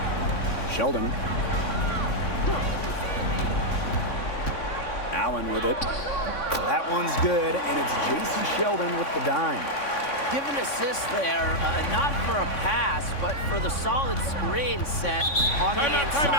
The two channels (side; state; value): right; late; 3.6 ms